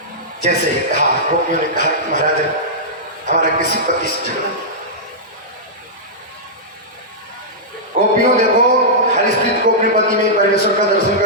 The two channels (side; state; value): both; normal; correlation -0.12